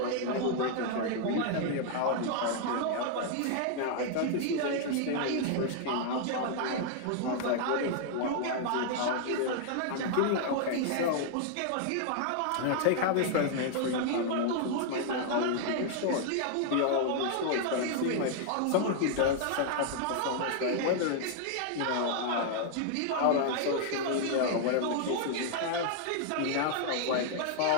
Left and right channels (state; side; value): different; both; correlation 0.00